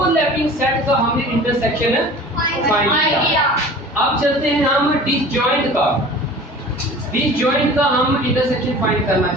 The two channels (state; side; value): normal; both; correlation 0.42